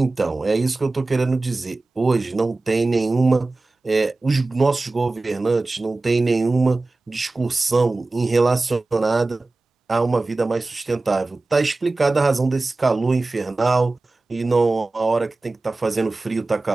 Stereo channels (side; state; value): left; quieter; 3.3 dB